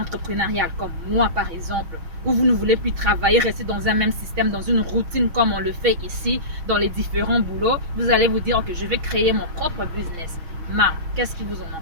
comme moi par exemple, où vous ne voulez plus travailler, rester dans un même système, dans une routine comme on le fait ici, dans les différents boulots, vous allez vous dire que je vais créer mon propre business. Mais qu'est-ce qui vous en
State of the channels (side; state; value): left; late; 6.3 ms